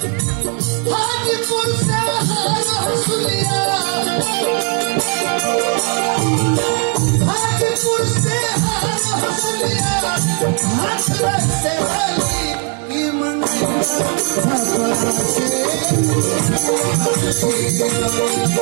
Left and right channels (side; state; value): left; quieter; 39.8 dB